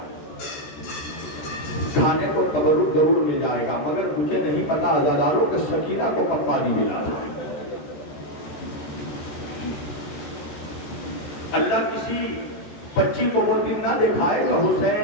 کھانے کو تبرک ضرور مل جائے گا، مگر مجھے نہیں پتا عزاداروں کہ سکینہ کو کب پانی ملا تھا۔ اللہ کسی بچی کو وہ دن نہ دکھائے کہ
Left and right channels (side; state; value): right; late; 14 ms